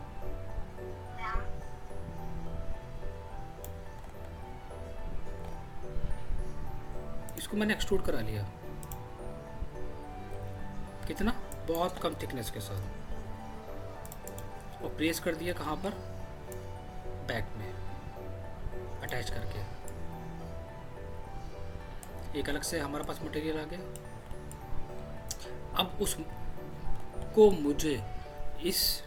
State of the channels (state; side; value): identical; both; correlation 1.00